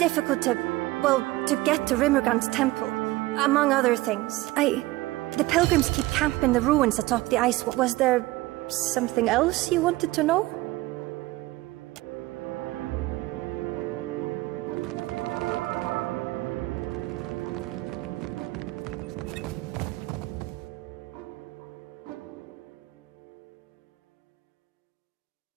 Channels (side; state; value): left; quieter; 19.1 dB